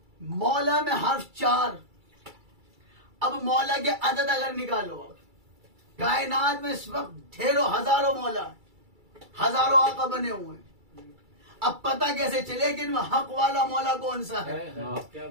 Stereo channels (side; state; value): left; late; 2.3 ms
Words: مولا میں حرف 4۔ اب مولا کے عدد اگر نکالو، کائنات میں اس وقت ڈھیروں ہزاروں مولا ہیں، ہزاروں آقا بنے ہوئے ہیں. اب پتہ کیسے چلے کہ ان میں حق والا مولا کون سا ہے